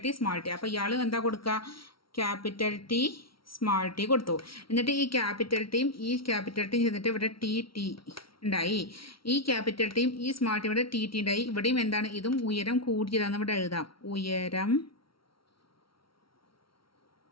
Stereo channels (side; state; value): right; late; 0.74 ms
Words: ടി, സ്മാൾ ടി. അപ്പോൾ ഇയാൾ എന്താ കൊടുക്കുക? ക്യാപിറ്റൽ ടി, സ്മാൾ ടി കൊടുത്തു. എന്നിട്ട് ഈ ക്യാപിറ്റൽ ടിയും ചെന്നിട്ട് ഇവിടെ ടി ഉണ്ടായി. ഈ ക്യാപിറ്റൽ ടിയും ഈ സ്മാൾ ടി ഇവിടെ ടി ഉണ്ടായി. ഇവിടെയും എന്താണ്? ഇതും ഉയരം കൂടിയതാണെന്ന് ഇവിടെ എഴുതാം. ഉയരം